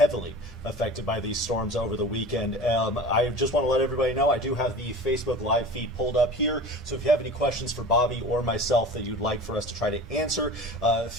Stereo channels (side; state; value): both; normal; correlation 0.37